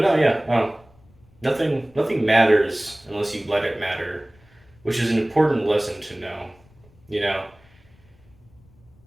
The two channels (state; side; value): noise; left; rumble, 29 dB below the sound